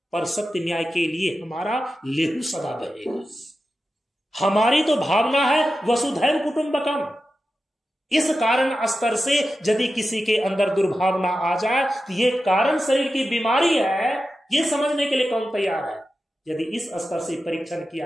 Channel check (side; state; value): both; normal; correlation 0.92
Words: पर सत्य न्याय के लिए हमारा लेहू सदा बहेगा। हमारी तो भावना है वसुधैव कुटुंबकम। इस कारण स्तर से यदि किसी के अंदर दुर्भावना आ जाए तो ये कारण शरीर की बीमारी है, ये समझने के लिए कौन तैयार है? यदि इस स्तर से परीक्षण